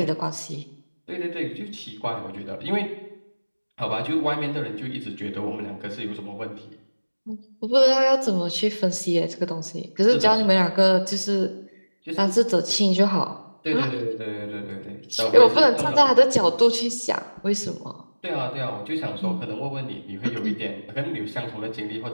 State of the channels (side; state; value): both; inverted; correlation -1.00